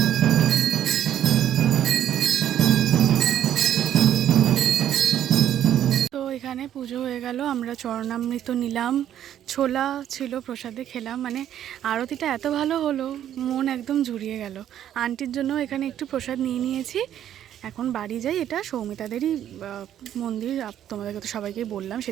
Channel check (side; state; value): left; quieter; 10.8 dB